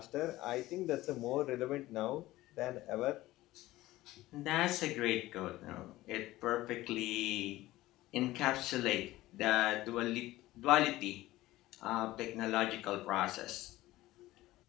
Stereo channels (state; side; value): quieter; right; 17.1 dB